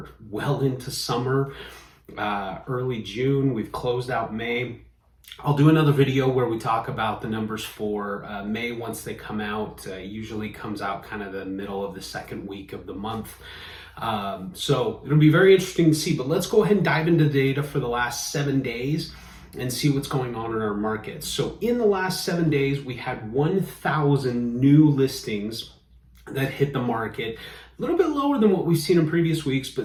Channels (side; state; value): both; identical; correlation 1.00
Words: well into summer. Early June, we've closed out May. I'll do another video where we talk about the numbers for May once they come out. Usually comes out kind of the middle of the second week of the month. So it'll be very interesting to see, but let's go ahead and dive into the data for the last 7 days and see what's going on in our markets. So in the last 7 days, we had 1,000 new listings that hit the market. A little bit lower than what we've seen in previous weeks,